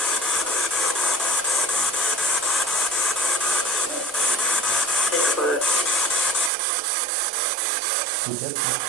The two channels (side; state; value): left; drops out; at 6.5 s